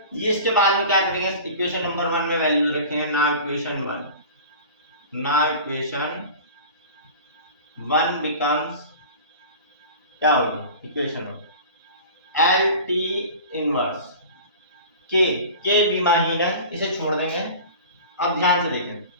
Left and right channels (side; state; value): both; inverted; correlation -0.38